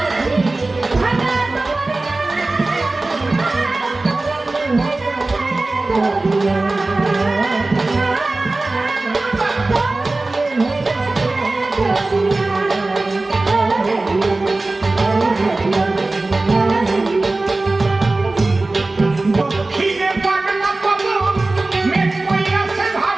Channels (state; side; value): quieter; left; 3.2 dB